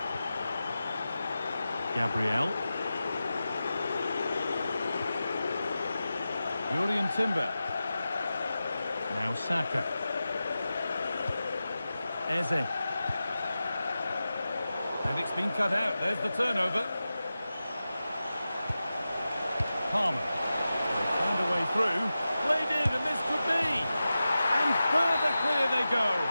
Gabriel. Jurrien Timber. Now Saka. Eze. And it's been cut out. There's the turnover. Palmer. They found a way through. Played in, and this could be. And further clear they go.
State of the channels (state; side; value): inverted; both; correlation -0.93